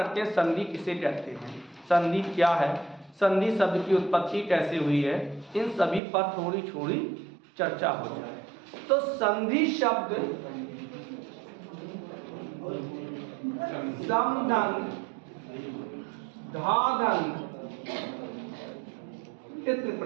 हैं संधि किसे कहते हैं, संधि क्या है, संधि शब्द की उत्पत्ति कैसे हुई है, इन सभी पर थोड़ी थोड़ी चर्चा हो जाए। तो संधि शब्द समधन, धाधन, तित्र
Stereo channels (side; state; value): left; drops out; at 6.0 s